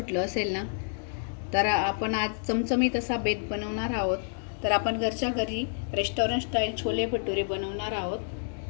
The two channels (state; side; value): silent; right; digital silence